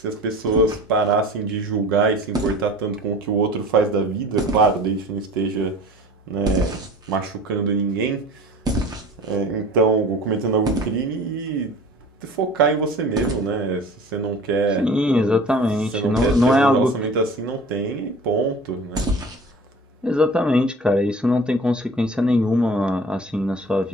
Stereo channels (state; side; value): normal; both; correlation 0.42